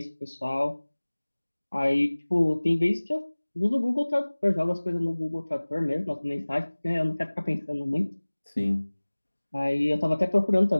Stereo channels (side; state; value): both; inverted; correlation -1.00